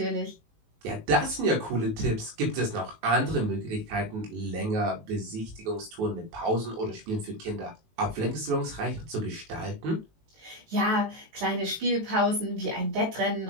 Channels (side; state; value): left; late; 18 ms